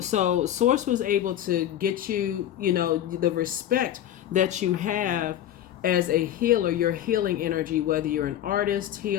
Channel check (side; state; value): right; quieter; 11.4 dB